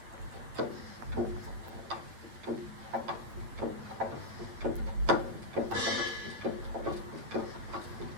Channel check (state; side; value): late; left; 8.6 ms